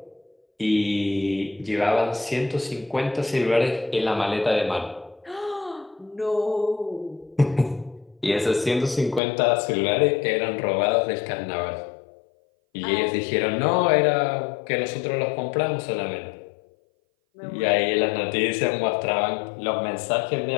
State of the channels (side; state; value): right; drops out; at 9.2 s